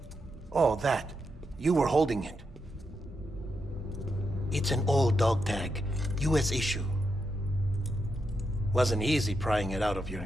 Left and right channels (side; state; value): both; normal; correlation 0.83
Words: Oh, that. You were holding it. It's an old dog tag, US issue. Wasn't easy prying it out of your